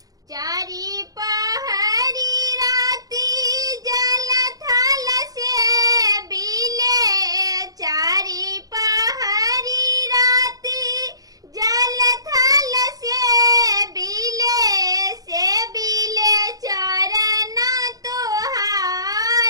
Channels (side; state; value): left; late; 0.18 ms